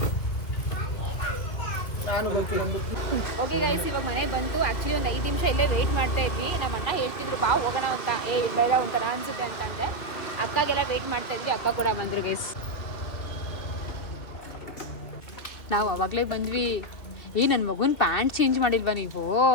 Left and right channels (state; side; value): late; right; 2.8 ms